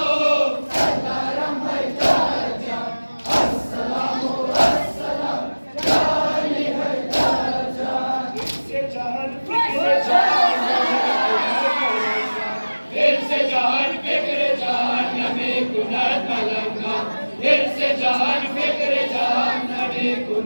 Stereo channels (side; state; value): both; inverted; correlation -1.00